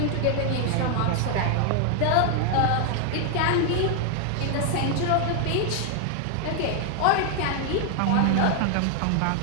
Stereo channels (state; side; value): different; both; correlation 0.00